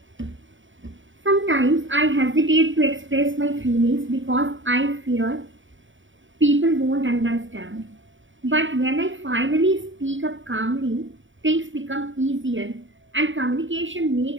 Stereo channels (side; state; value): left; late; 0.56 ms